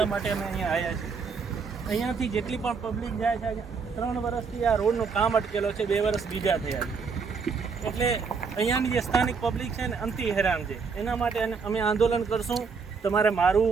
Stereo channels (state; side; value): quieter; left; 5.3 dB